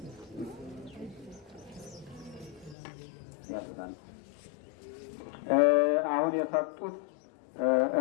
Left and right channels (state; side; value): drops out; right; at 2.8 s